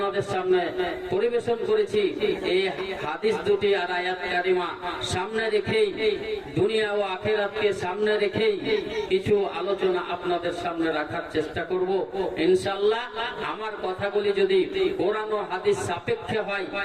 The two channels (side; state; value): both; identical; correlation 1.00